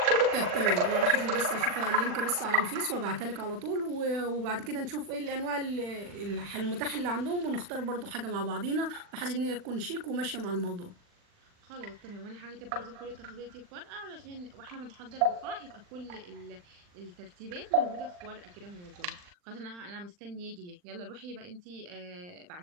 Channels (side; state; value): left; late; 40 ms